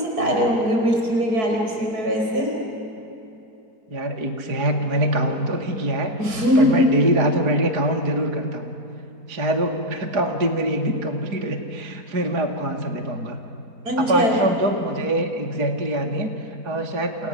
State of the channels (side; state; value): left; late; 4.6 ms